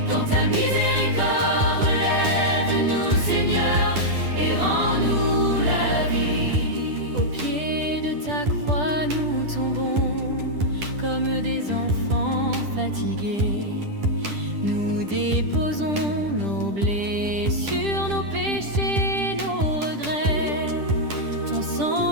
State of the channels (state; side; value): late; left; 10 ms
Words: Dans ta miséricorde, relève-nous, Seigneur, et rends-nous la vie. Au pied de ta croix, nous tombons comme des enfants fatigués. Nous déposons nos blessures, nos péchés.